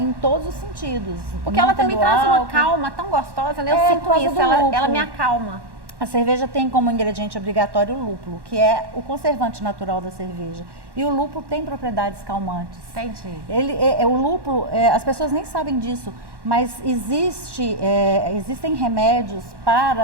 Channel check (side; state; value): left; late; 1.1 ms